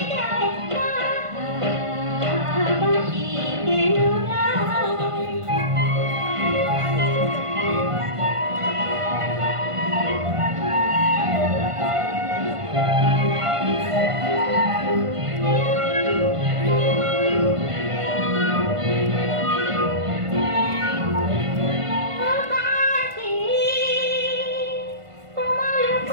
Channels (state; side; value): late; left; 1.5 ms